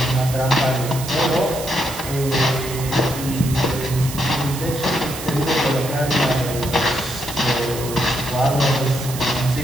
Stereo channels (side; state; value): right; noise; hiss, 10 dB below the sound